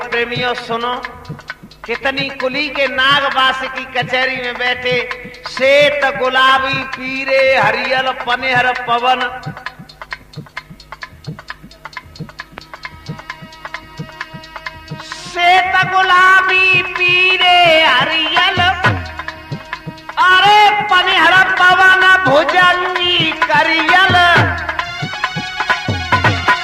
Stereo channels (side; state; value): both; identical; correlation 1.00